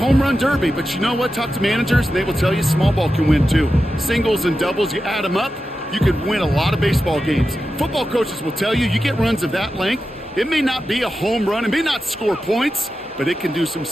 run derby, but you know what? Talk to managers, and they will tell you small ball can win too. Singles and doubles, you add them up, you could win a lot of baseball games. Football coaches will tell you, you get runs of that length, it may not be a home run, it may not score points, but it can do some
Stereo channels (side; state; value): both; normal; correlation 0.91